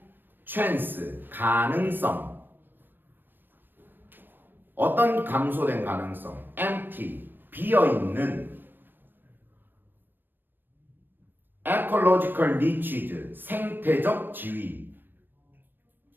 chance, 가능성. 어떤 감소된 가능성? empty, 비어있는 ecological niches, 생태적 지위.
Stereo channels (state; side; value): late; left; 0.094 ms